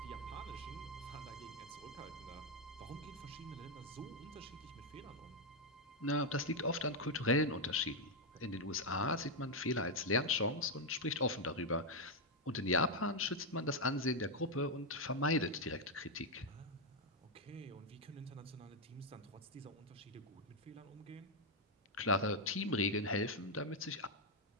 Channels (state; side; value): normal; both; correlation 0.02